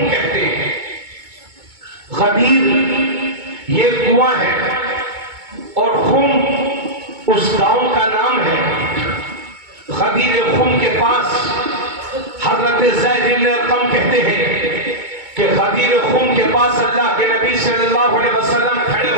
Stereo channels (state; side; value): late; left; 2.2 ms